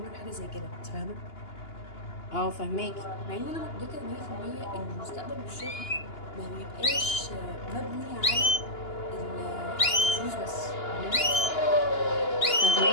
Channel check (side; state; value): right; late; 2.9 ms